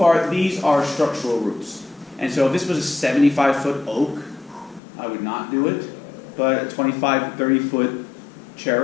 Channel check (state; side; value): drops out; right; at 4.8 s